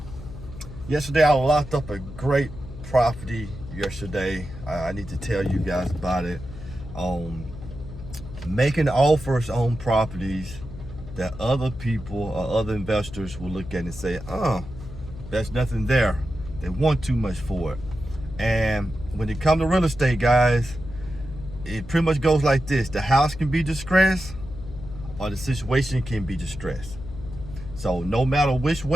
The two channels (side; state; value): left; noise; hum, 13 dB below the sound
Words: Yesterday I locked up a great property yesterday. I need to tell you guys about it. Making offers on properties that other people or other investors will look at and say, there's nothing there. They want too much for it. And when it comes to real estate, guys, it pretty much goes like this. The house can be distressed or the situation can be distressed. So no matter which